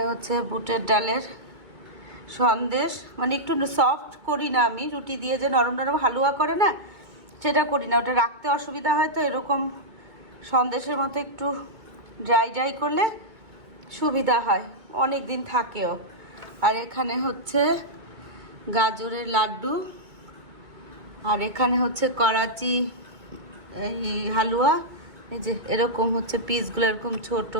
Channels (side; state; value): left; late; 2.2 ms